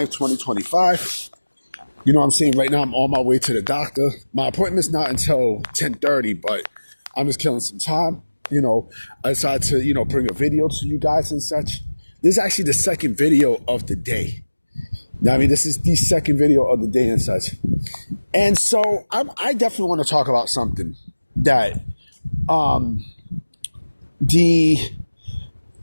2025. You know what I'm saying? Right now, I'm on my way to the doctor. My appointment's not until 10:30, but I'm just killing some time. I decided to, bring a video to you guys and such. This is actually the second video of the day. Now, I mean, this is the second video of the day and such. And so I definitely want to talk about something that I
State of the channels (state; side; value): inverted; both; correlation -1.00